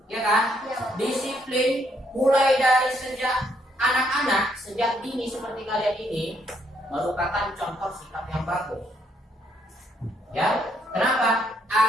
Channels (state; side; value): normal; both; correlation 0.72